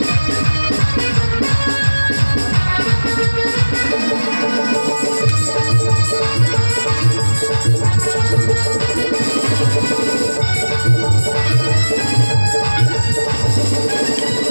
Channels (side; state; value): both; inverted; correlation -1.00